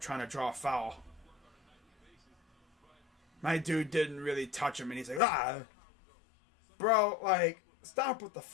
trying to draw a foul. My dude didn't really touch him and he's like, ah. Bro, like, stop with the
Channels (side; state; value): right; drops out; at 5.2 s